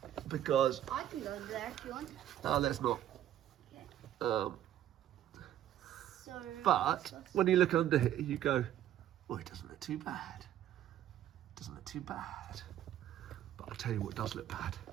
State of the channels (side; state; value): left; quieter; 11.7 dB